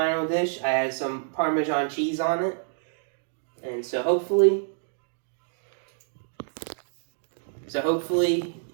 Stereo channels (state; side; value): silent; left; digital silence